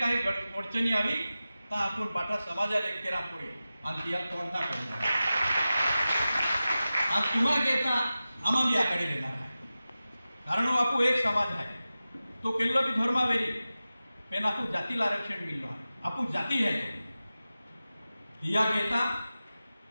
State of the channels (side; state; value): both; inverted; correlation -0.95